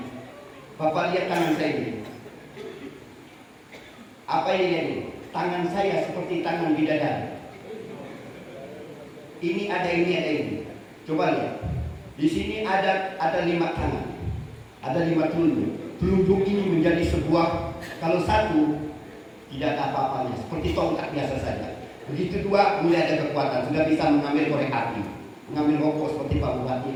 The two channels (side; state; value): both; identical; correlation 1.00